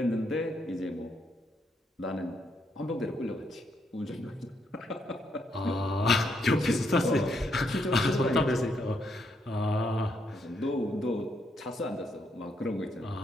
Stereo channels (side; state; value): both; normal; correlation 0.76